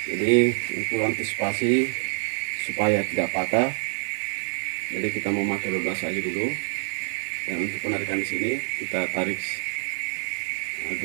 Jadi untuk antisipasi supaya tidak patah, jadi kita memakai 12 saja dulu. Dan untuk penarikan di sini kita tarik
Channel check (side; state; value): left; silent; digital silence